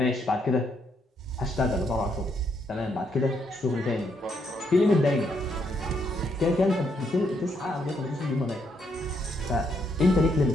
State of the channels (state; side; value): normal; both; correlation 0.75